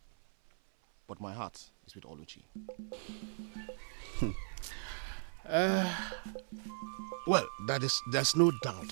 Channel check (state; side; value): silent; left; 53 dB below the other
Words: But my heart is with Oluchi. Well, there's no